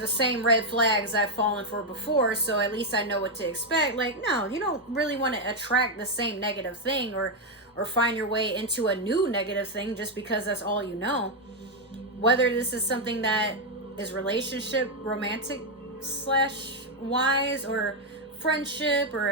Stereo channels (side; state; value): both; normal; correlation 0.02